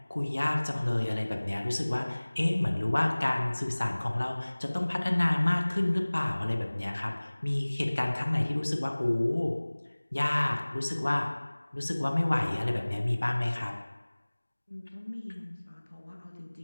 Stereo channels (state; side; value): inverted; both; correlation -1.00